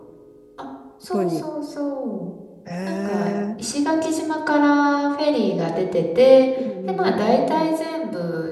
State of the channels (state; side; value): identical; both; correlation 1.00